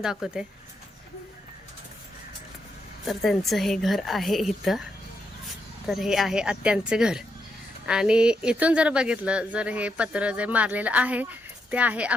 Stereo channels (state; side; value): normal; both; correlation 0.81